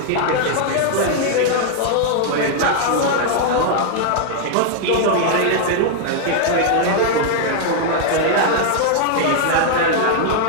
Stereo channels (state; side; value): different; both; correlation -0.01